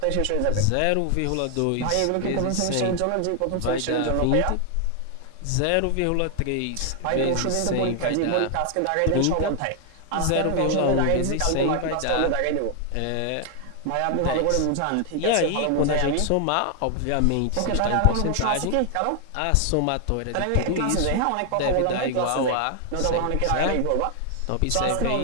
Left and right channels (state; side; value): different; both; correlation 0.00